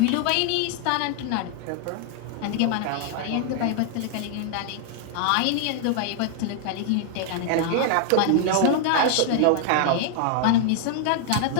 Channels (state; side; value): different; both; correlation 0.00